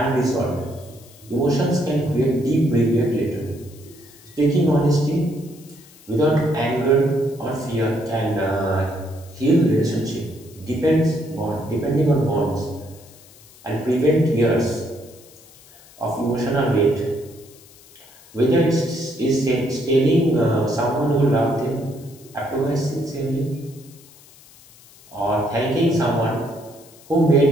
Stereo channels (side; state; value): left; noise; hiss, 24 dB below the sound